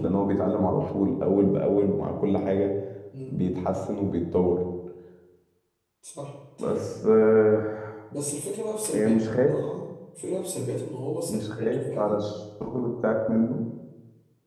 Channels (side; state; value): both; identical; correlation 1.00